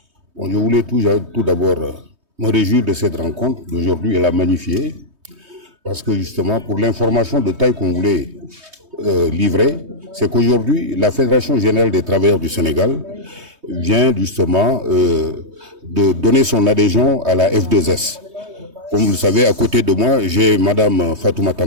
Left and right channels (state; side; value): late; left; 3.2 ms